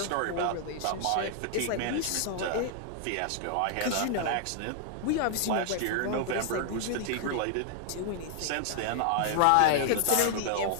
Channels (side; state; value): both; different; correlation 0.00